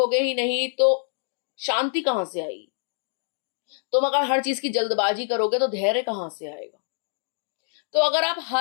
ही नहीं तो शांति कहां से आएगी? तुम अगर हर चीज की जल्दबाजी करोगे तो धैर्य कहां से आएगा? तो अगर आप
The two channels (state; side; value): silent; right; digital silence